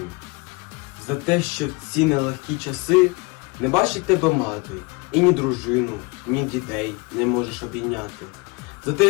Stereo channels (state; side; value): quieter; right; 27.2 dB